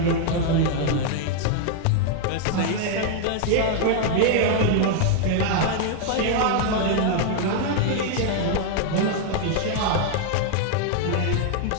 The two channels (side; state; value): both; different; correlation 0.00